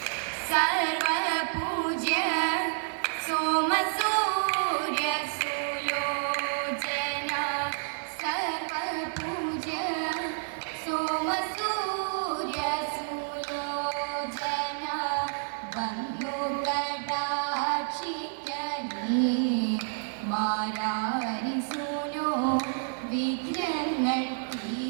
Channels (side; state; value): left; silent; digital silence